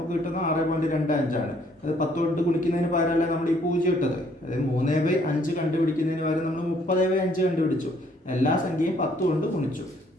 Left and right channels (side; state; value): both; normal; correlation 0.64